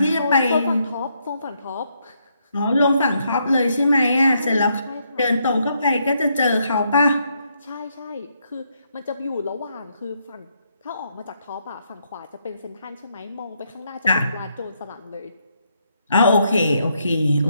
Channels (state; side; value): inverted; both; correlation -0.76